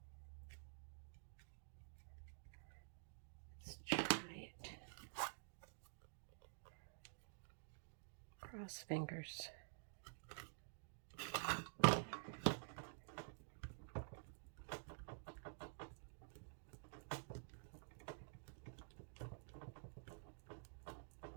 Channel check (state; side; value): silent; left; digital silence